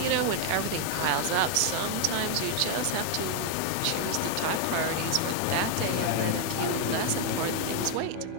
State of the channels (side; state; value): both; different; correlation 0.01